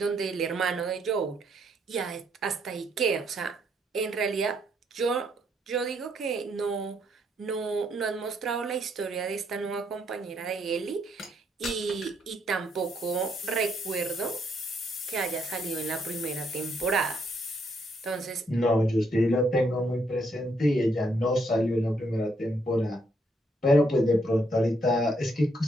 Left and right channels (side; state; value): both; normal; correlation 0.73